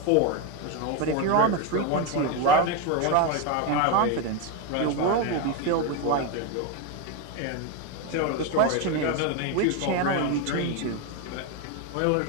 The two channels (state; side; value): different; both; correlation 0.03